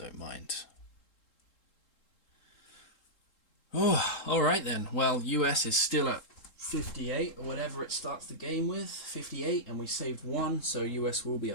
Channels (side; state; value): right; late; 3.7 ms